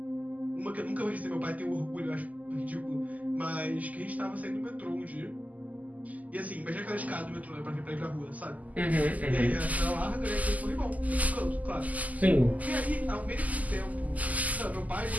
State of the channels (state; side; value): late; left; 0.077 ms